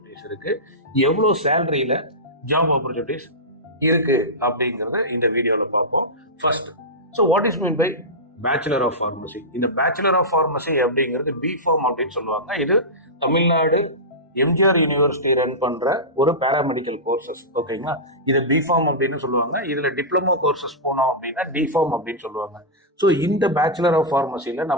இருக்கு, எவ்வளோ சேலரியில ஜாப் ஆப்பர்ச்சுனிட்டிஸ் இருக்கு அப்படிங்கறத இந்த வீடியோல பார்ப்போம். First, so what is mean by bachelor of pharmacy? இந்த பேச்சுலர் ஆஃப் ஃபார்மசி அப்படிங்கிறது பிஃபார்ம் அப்படின்னு சொல்லுவாங்க. இது தமிழ்நாடு எம்ஜிஆர் யூனிவர்சிட்டி ரன் பண்ற ஒரு பேராமெடிக்கல் கோர்சஸ். ஓகேங்களா? இது பிஃபார்ம் அப்படின்னு சொல்லுவாங்க. இதுல டிப்ளமோ கோர்சஸ் போனோம் அப்படின்னா டிஃபார்ம் அப்படின்னு சொல்லுவாங்க. ஸோ இந்த பேச்சுலர் ஆஃப் ஃபார்மசியில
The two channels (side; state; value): both; normal; correlation -0.14